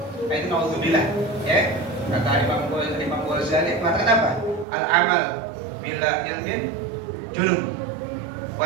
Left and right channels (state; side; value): drops out; left; at 4.7 s